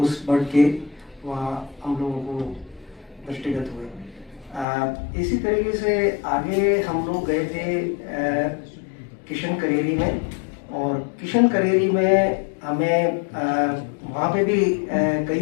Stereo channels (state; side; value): drops out; right; at 4.7 s